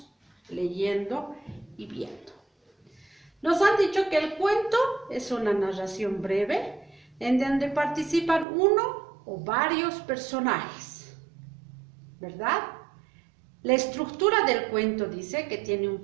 leyendo y viendo. Nos han dicho que el cuento es una narración breve en donde participan uno o varios personajes, ¿verdad? La estructura del cuento dice que tiene un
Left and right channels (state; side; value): drops out; left; at 8.5 s